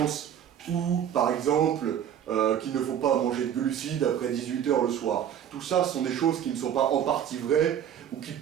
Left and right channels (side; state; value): left; quieter; 9.5 dB